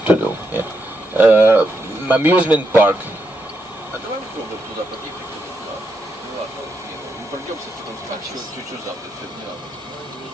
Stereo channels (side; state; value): both; normal; correlation 0.81